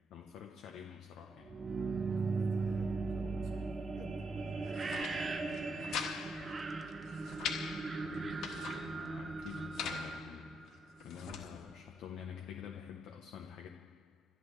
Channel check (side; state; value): both; normal; correlation 0.79